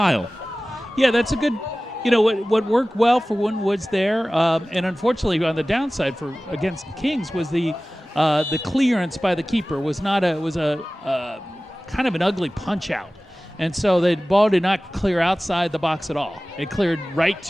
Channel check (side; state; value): both; normal; correlation 0.97